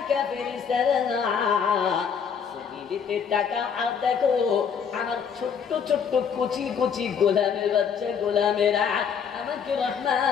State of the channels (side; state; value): right; quieter; 7.0 dB